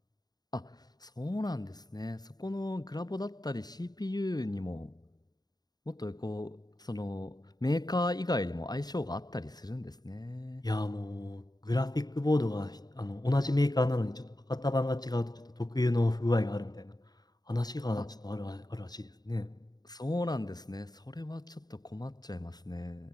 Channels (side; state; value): right; late; 0.19 ms